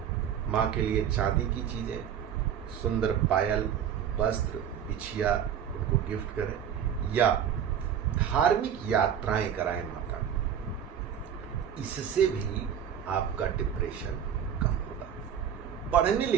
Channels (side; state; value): left; quieter; 8.8 dB